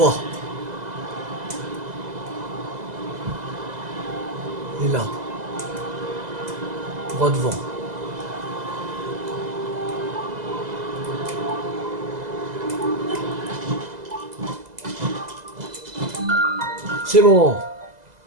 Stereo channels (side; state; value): left; late; 2.0 ms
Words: Il est là. Droit devant. C'est bon.